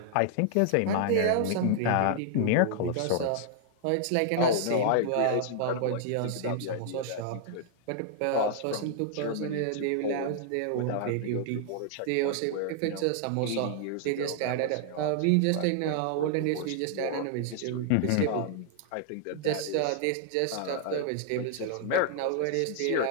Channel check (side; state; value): both; different; correlation 0.00